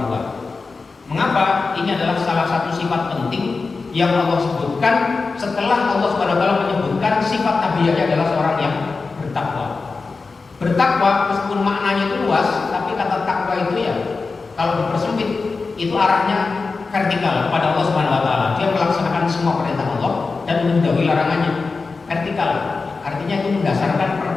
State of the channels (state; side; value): quieter; right; 4.2 dB